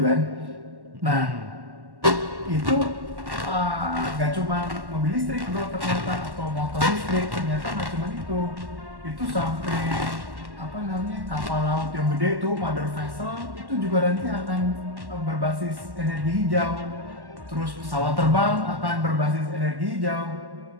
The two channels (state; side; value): late; left; 1.1 ms